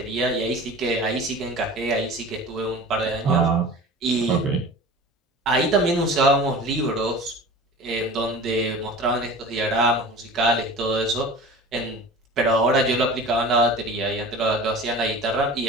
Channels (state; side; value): normal; both; correlation 0.38